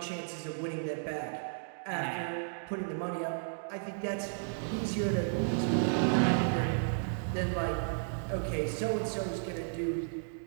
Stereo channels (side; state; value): left; silent; digital silence